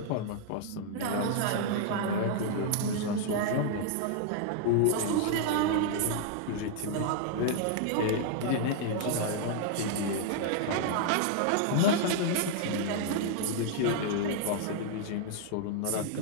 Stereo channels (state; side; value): different; both; correlation 0.00